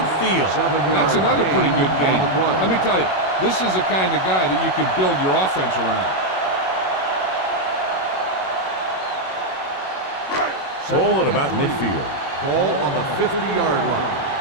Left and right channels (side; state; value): right; late; 21 ms